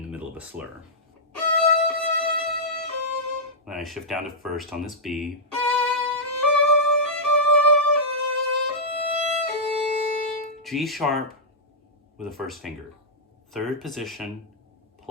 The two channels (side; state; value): both; normal; correlation -0.10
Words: the middle of a slur. Then I shift down to first on this B. G sharp with a first finger. Third position